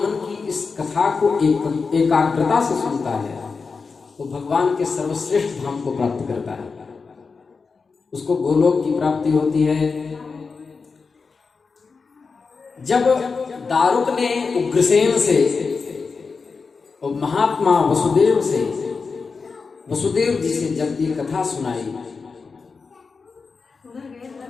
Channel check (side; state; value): right; quieter; 4.8 dB